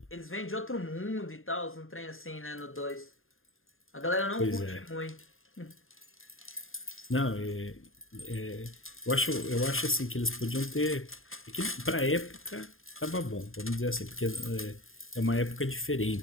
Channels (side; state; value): right; late; 0.60 ms